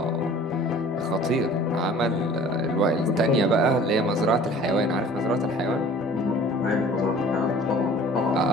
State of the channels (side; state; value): both; normal; correlation 0.47